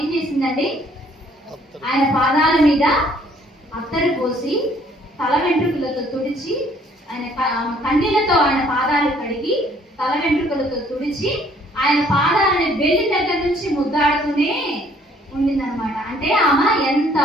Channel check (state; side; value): normal; both; correlation 0.61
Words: ఏం చేసిందండి? ఆయన పాదాల మీద అత్తరు పోసి తల వెంట్రుకలతో తుడిచి ఆయన కన్నీళ్లతో ఆయన పాదాలు కడిగి తల వెంట్రుకలతో తుడిచి ఆయన పాదాలని బెల్లి దగ్గర నుంచి ముద్దాడుతూనే ఉండిందనమాట. అంటే ఆమె ఎంత